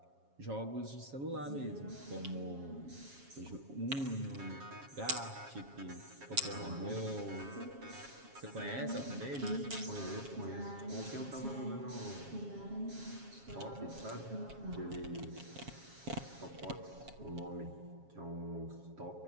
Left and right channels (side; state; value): left; late; 7.3 ms